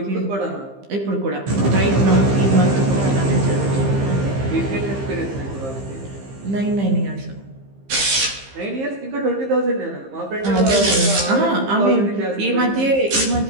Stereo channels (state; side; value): late; left; 15 ms